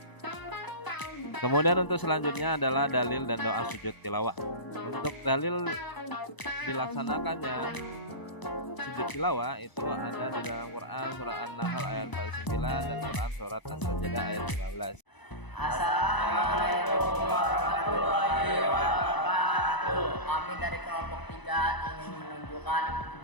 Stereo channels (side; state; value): right; late; 1.0 ms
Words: Kemudian untuk selanjutnya adalah dalil dan doa sujud tilawah. Untuk dalil dilaksanakannya sujud tilawah itu ada di dalam Quran surat An-Nahl ayat 49 dan Quran surat As-Sajdah ayat 15. Assalamualaikum warahmatullahi wabarakatuh. Kami dari kelompok 3 ingin menunjukkan